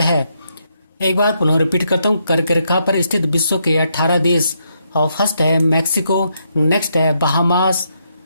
है। एक बार पुनः रिपीट करता हूँ, कर्क रेखा पर स्थित विश्व के 18 देश और फर्स्ट है मैक्सिको, नेक्स्ट है बहामास,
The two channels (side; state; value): both; inverted; correlation -0.78